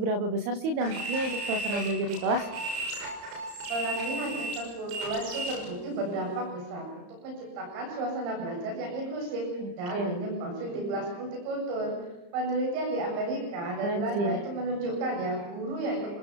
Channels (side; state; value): left; late; 34 ms